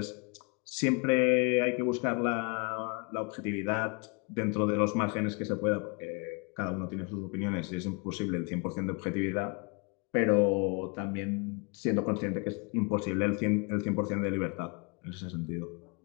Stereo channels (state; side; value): quieter; right; 32.3 dB